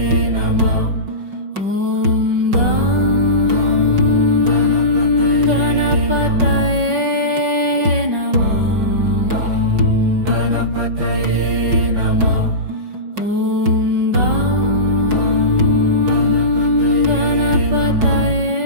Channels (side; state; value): left; late; 5.4 ms